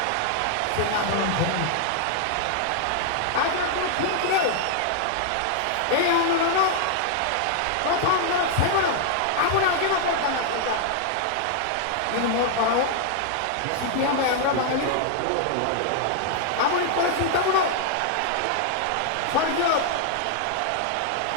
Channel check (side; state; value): both; different; correlation 0.00